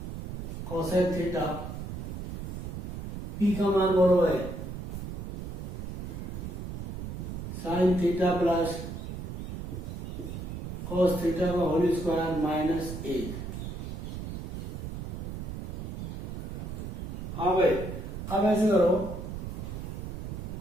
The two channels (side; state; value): right; noise; rumble, 6 dB below the sound